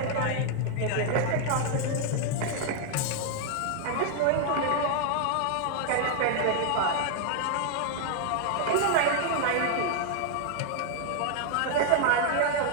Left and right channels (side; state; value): both; different; correlation 0.00